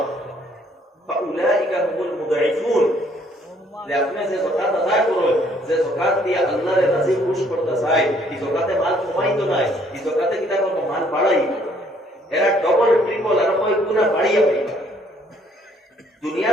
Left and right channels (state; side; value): normal; both; correlation 0.64